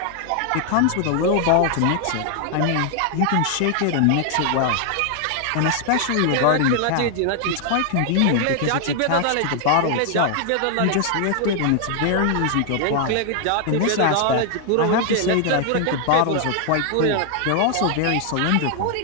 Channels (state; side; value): different; both; correlation 0.00